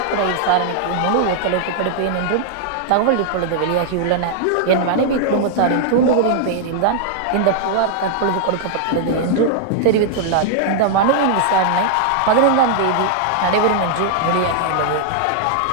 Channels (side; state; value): both; different; correlation -0.01